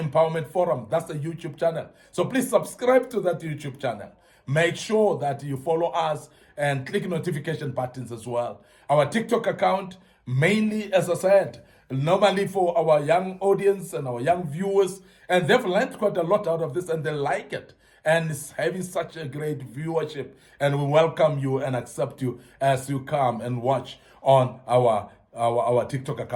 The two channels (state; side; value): identical; both; correlation 1.00